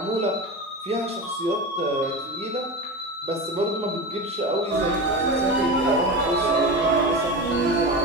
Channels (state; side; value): normal; both; correlation 0.25